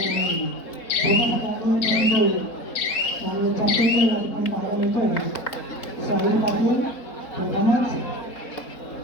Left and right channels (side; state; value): right; late; 4.1 ms